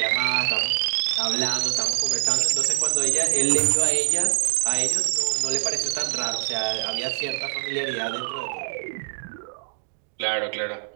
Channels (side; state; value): left; silent; digital silence